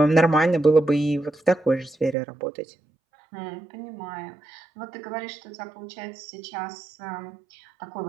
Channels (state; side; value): drops out; left; at 2.1 s